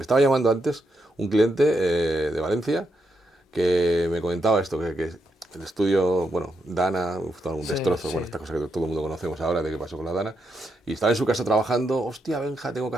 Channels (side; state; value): both; normal; correlation 0.82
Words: estaba llamando antes un cliente de Valencia que me comentaba esto, que el estudio, bueno, Dana, un destrozo, bueno, esta cosa que todo el mundo conocemos ahora de qué pasó con la Dana, y estaba en su casa trabajando, hostia, Benja, tengo que